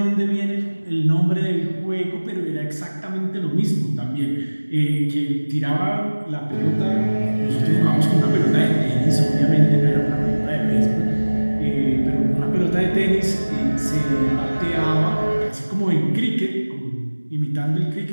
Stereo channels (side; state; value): both; inverted; correlation -1.00